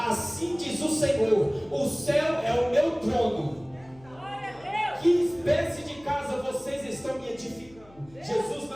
diz o Senhor, o céu é o meu trono. Que espécie de casa vocês estão me edificando? Jesus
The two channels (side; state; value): left; noise; hum, 25 dB below the sound